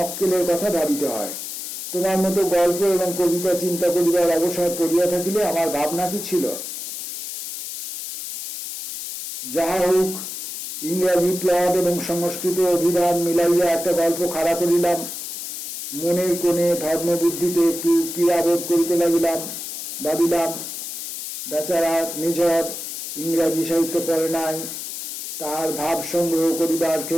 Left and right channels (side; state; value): left; noise; hiss, 7 dB below the sound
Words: কথা ভাবিতে হয়। তোমার মতো গল্প এবং কবিতা চিন্তা করিবার অবসর পড়িয়া থাকিলে আমার ভাবনা কি ছিল? যাহা হোক, ইংরাজি প্লট এবং সংস্কৃত অভিধান মিলাইয়া একটা গল্প খাড়া করিলাম। মনের কোণে ধর্মবুদ্ধিতে একটু পীড়াবোধ করিতে লাগিলাম। ভাবিলাম, বেচারা নিঝর ইংরাজি সাহিত্য পড়ে নাই, তাহার ভাব সংগ্রহ করিবার